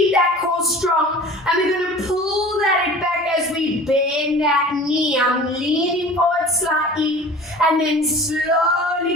that core strong. And we're going to pull that back as we bend that knee. I'm leaning forward slightly and then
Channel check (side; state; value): both; normal; correlation 0.41